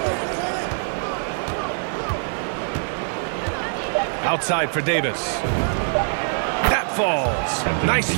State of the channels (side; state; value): left; silent; digital silence